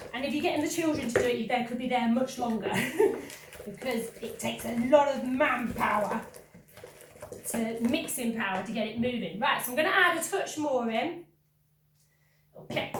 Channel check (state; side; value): identical; both; correlation 1.00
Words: And if you're getting the children to do it, they could be there much longer because it takes a lot of manpower, mixing power to get it moving. Right, so I'm going to add a touch more in. Okay,